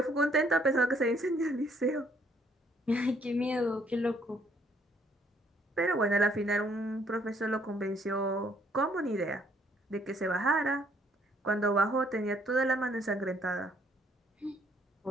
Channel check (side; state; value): both; normal; correlation 0.66